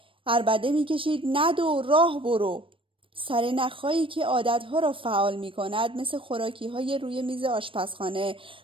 عربده می کشید ندو راه برو. سرنخ‌هایی که عادت‌ها را فعال می‌کند مثل خوراکی‌های روی میز آشپزخانه،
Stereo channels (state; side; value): late; left; 0.25 ms